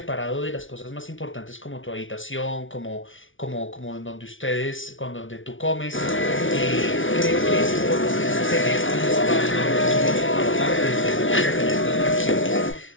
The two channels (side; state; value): right; late; 0.57 ms